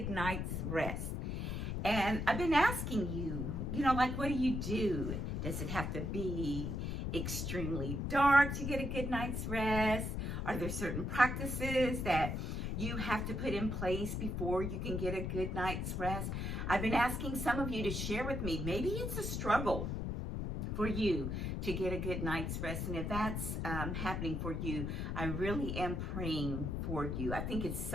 night's rest. And I've been asking you, like, what do you do? Does it have to be extremely dark to get a good night's rest? Are there certain practices that you have to put in place before you can get a good night's rest? I've been asking some of you to share with me. Maybe it's a struggle for you to get a good night's rest. And if that's happening for you, I really am praying for you. I think it's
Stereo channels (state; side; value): noise; left; rumble, 2 dB below the sound